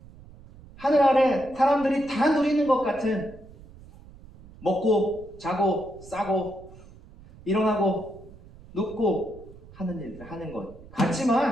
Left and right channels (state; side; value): noise; right; rumble, 20 dB below the sound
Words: 하늘 아래 사람들이 다 누리는 것 같은 먹고 자고 싸고 일어나고 눕고 하는 일들 하는 것